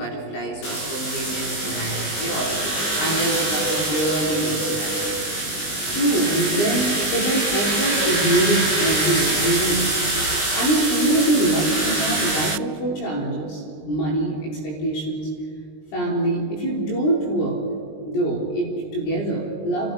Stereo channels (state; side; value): late; right; 20 ms